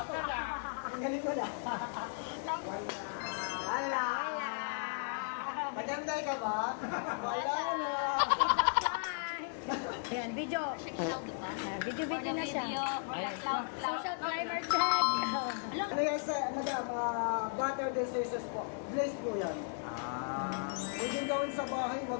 Ganito na. Ala! Maganda ka ba? Wala na. Ayan, video. Video na siya. Social climber check. Ano yan sa, madam, butter diseases po. Glaze po yan. Huwag yung gawin sa bahay, huwag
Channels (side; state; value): right; silent; digital silence